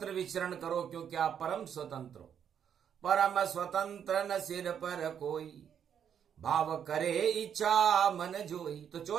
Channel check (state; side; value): quieter; left; 8.5 dB